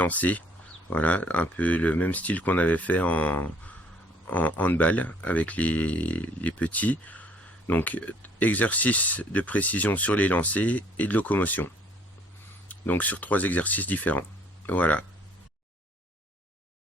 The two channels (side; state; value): both; normal; correlation 0.60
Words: Voilà, un peu le même style qu'on avait fait en handball avec les petits. Donc, exercice de précision sur les lancers et de locomotion. Donc sur 3 exercices différents. Voilà.